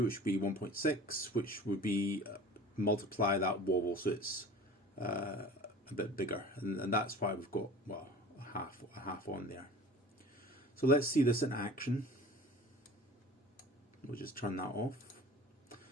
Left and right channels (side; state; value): both; normal; correlation 0.41